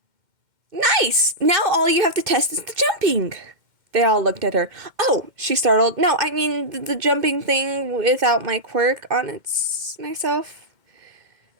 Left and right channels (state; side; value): late; left; 2.1 ms